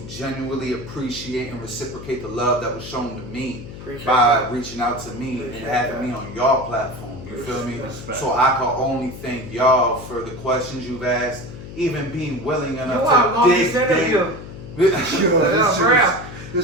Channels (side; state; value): left; noise; hum, 13 dB below the sound